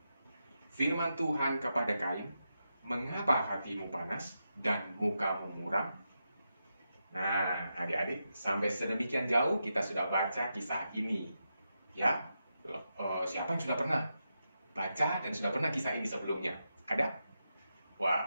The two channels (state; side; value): inverted; both; correlation -0.87